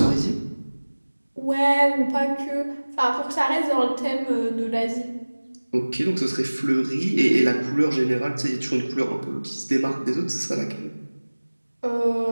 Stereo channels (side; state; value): both; inverted; correlation -1.00